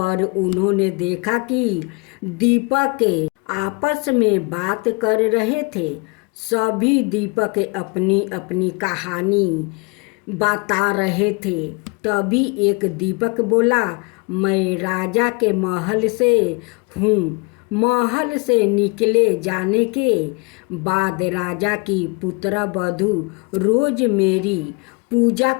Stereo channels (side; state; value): right; quieter; 31.3 dB